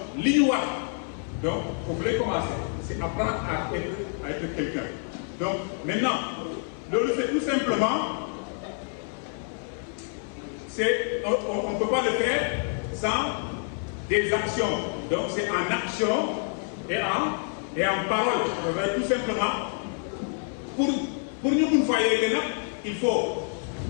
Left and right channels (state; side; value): silent; right; 56 dB below the other